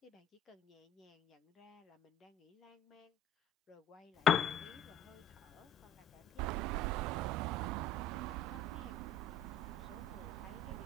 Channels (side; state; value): both; normal; correlation 0.46